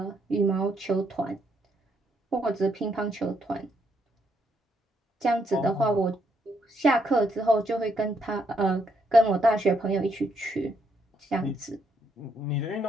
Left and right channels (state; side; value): normal; both; correlation 0.75